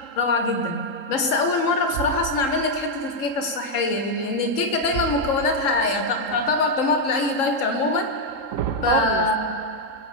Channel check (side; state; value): right; late; 3.8 ms